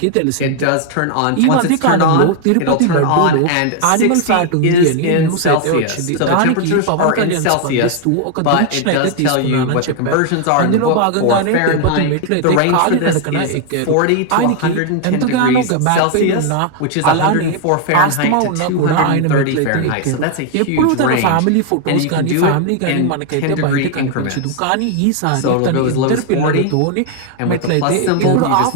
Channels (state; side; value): different; both; correlation 0.00